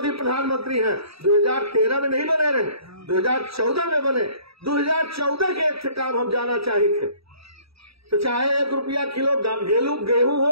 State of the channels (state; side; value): late; left; 0.77 ms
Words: प्रधानमंत्री हैं, 2013 में नहीं बने रहे, 2014 में बने। 2014 के एक से काम हम जाना चाहिए थे, तो चाहे ₹1 किलो गेहूं